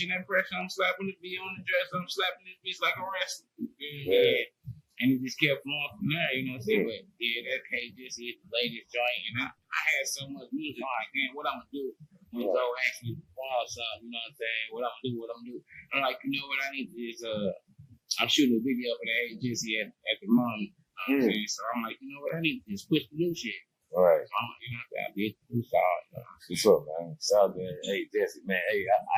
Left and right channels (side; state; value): both; identical; correlation 1.00